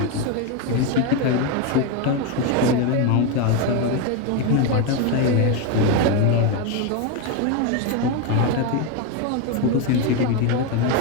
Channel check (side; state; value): both; different; correlation 0.02